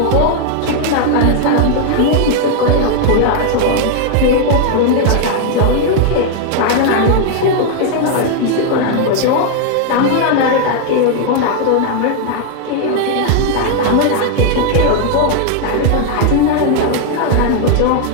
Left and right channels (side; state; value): both; different; correlation 0.00